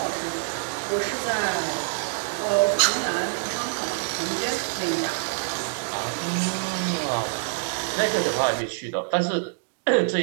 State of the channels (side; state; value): left; silent; digital silence